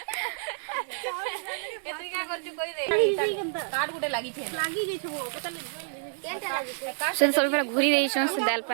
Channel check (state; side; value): silent; left; 59 dB below the other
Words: केतरी का करछु कोई दे कार्ड गुटे लागी छे लागी गई छो पता केनटा लागी छे से सब पहले घुरी देई छन से दाल